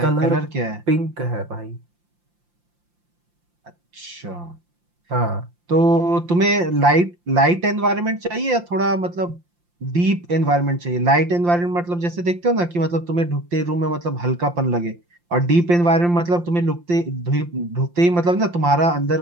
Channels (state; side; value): late; left; 5.7 ms